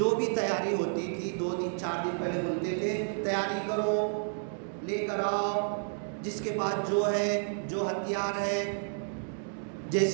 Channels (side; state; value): left; silent; digital silence